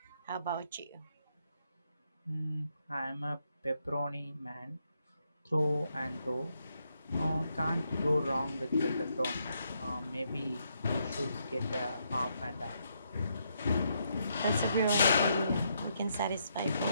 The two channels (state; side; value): inverted; both; correlation -0.78